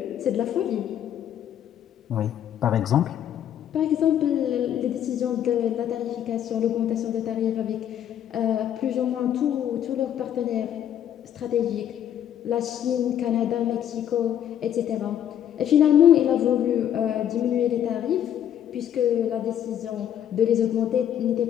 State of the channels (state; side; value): quieter; right; 10.2 dB